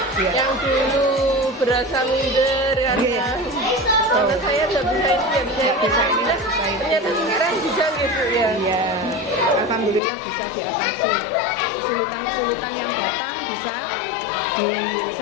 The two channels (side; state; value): right; drops out; at 10.0 s